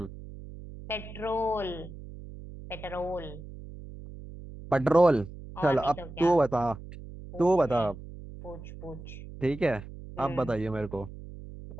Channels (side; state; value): right; noise; hum, 14 dB below the sound